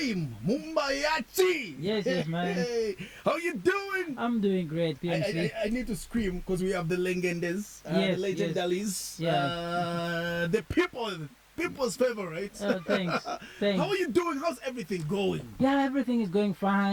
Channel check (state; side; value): identical; both; correlation 1.00